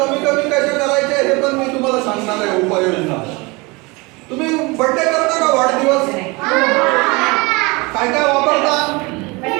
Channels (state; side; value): quieter; left; 25.9 dB